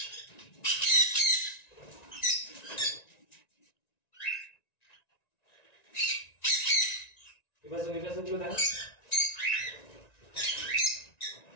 এবার গুলো দেখা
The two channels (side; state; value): right; late; 1.9 ms